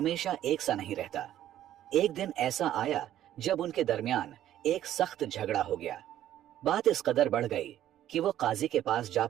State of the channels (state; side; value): quieter; left; 12.2 dB